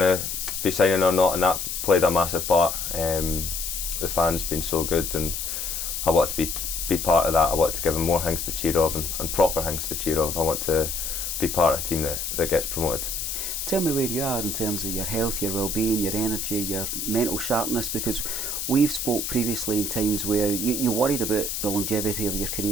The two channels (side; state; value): left; noise; hiss, 3 dB below the sound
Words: to be signing or not, and that played a massive part. The fans been so good, and I wanted to be part of that. I wanted to give them more things to cheer of, and proper things to cheer of. I want to be part of a team that gets promoted. Tell me where you are in terms of your health, your well-being, your energy, your mental sharpness, because we've spoke previously in times where you worried about the longevity of your